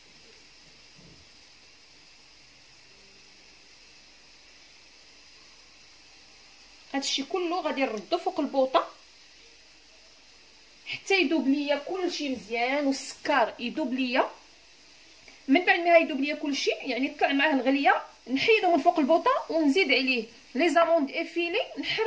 هادشي كله غادي نردو فوق البوطه حتى يذوب ليا كلشي مزيان والسكر يذوب ليا. من بعد ما يذوب ليا كلشي يعني طلع معاه الغليه، نحيدو من فوق البوطه ونزيد عليه لي زاموند افيلي،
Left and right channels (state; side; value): identical; both; correlation 1.00